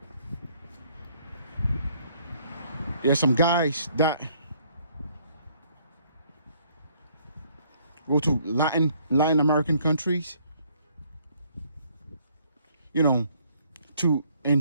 There are some guys that go to Latin American countries, to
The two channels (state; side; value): inverted; both; correlation -0.64